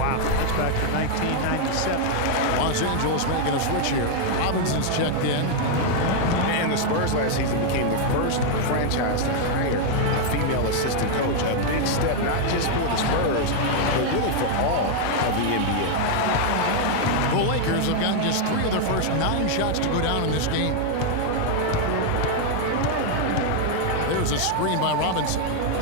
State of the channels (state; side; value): different; both; correlation 0.00